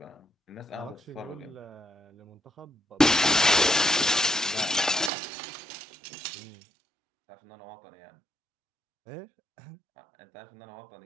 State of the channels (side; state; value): left; drops out; at 5.1 s